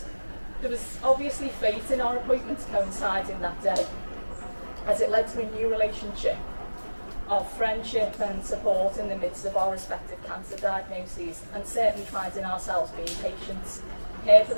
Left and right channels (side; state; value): both; inverted; correlation -1.00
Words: There was obviously fate in our appointments coinciding that day, as it led to a new relationship of friendship and support in the midst of our respective cancer diagnoses, and certainly finding ourselves being patients, her for